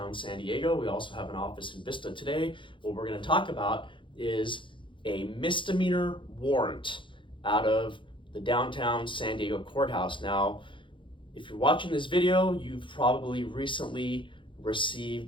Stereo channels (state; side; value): late; right; 0.24 ms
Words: San Diego. We also have an office in Vista. Today, what we're going to talk about is a misdemeanor warrant out of the downtown San Diego courthouse. Now, if you're watching this video, you've probably recently